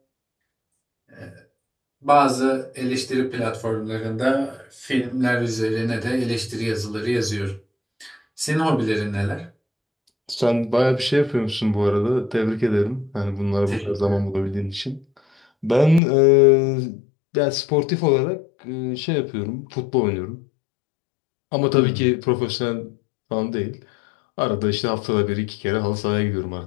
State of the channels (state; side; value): drops out; right; at 16.0 s